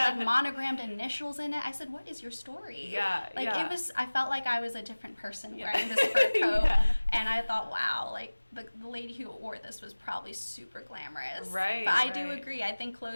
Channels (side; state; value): both; inverted; correlation -1.00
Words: like monogrammed initials in it. I said, what is your story? Yeah. Like yeah. it was, I felt like I was a different person wearing this fur coat. And I thought, wow, like the lady who wore this was probably super glamorous. Right. But I do agree. I think